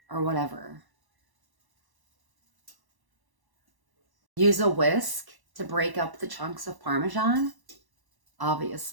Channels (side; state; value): left; late; 1.1 ms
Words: or whatever. Use a whisk to break up the chunks of Parmesan,